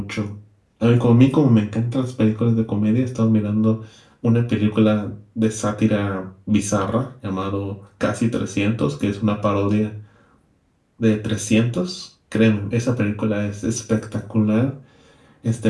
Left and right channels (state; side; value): identical; both; correlation 1.00